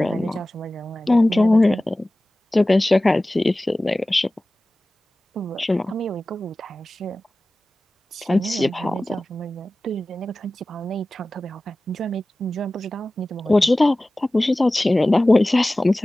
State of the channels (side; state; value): both; normal; correlation 0.97